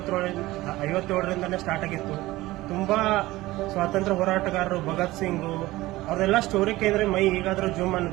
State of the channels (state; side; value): quieter; left; 18.2 dB